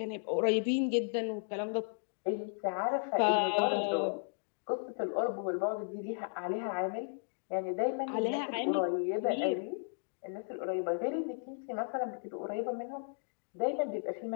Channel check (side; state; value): right; silent; digital silence